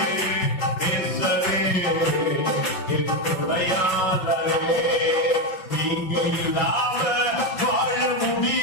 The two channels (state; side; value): late; right; 5.3 ms